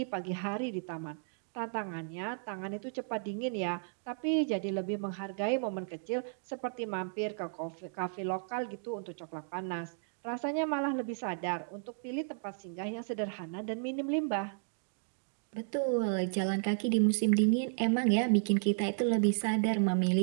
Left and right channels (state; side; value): silent; left; digital silence